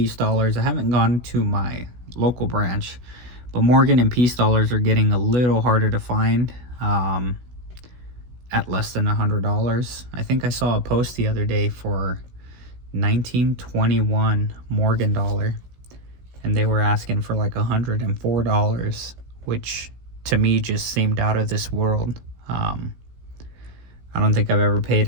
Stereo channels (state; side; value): late; left; 16 ms